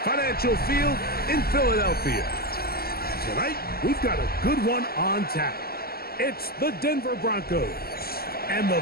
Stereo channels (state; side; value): late; right; 0.45 ms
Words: Financial Field in Philadelphia. Tonight, we've got a good one on tap. It's the Denver Broncos and the